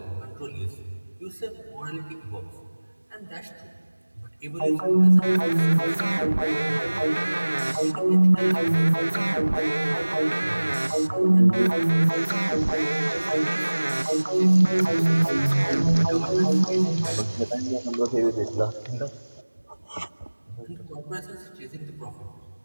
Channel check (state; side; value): inverted; both; correlation -1.00